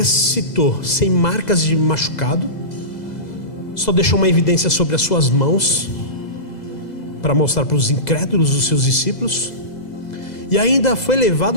sem marcas de machucado, só deixou uma evidência sobre as suas mãos para mostrar para os incrédulos, os seus discípulos, e ainda foi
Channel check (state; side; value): late; right; 2.0 ms